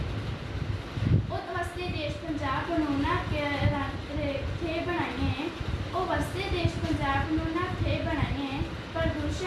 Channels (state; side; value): identical; both; correlation 1.00